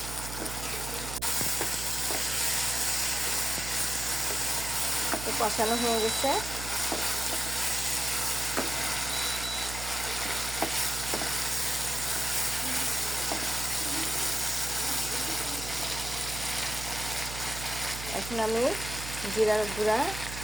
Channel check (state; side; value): noise; right; hum, 8 dB below the sound